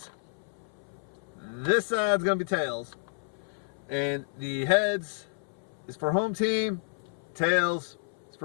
This side's going to be tails. And the heads is for home team. Tails is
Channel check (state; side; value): silent; right; 57 dB below the other